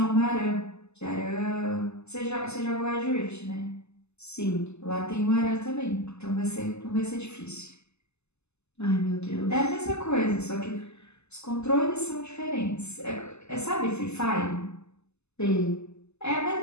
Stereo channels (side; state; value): right; late; 0.80 ms